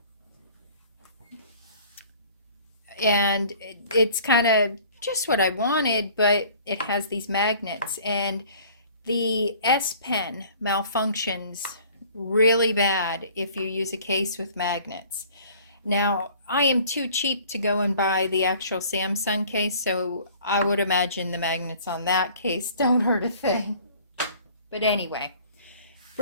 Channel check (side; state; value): both; inverted; correlation -0.51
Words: And it's kind of just what I wanted, but it has these magnets, and the S Pen malfunctions really bad if you use a case with magnets. Now, I am too cheap to go and buy the actual Samsung case, so I would imagine the magnets on that case don't hurt a thing. But anyway,